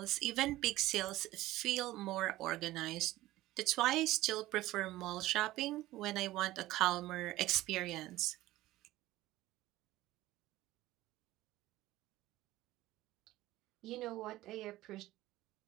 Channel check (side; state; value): left; quieter; 16.6 dB